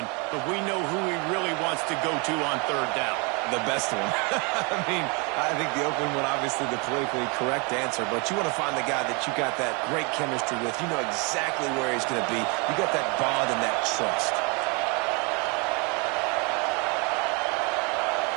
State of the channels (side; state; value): left; quieter; 31.6 dB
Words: but we know who he really wants to go to on third down. The best one. I mean, I think the open one, obviously the politically correct answer, but you want to find the guy that you got that great chemistry with. You know exactly where he's going to be. You got that bond and that trust.